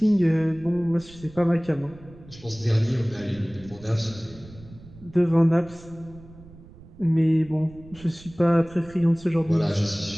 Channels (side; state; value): right; noise; rumble, 20 dB below the sound